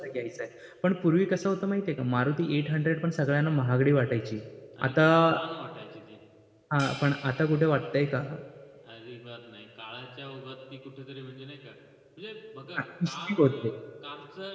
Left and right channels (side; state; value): both; identical; correlation 1.00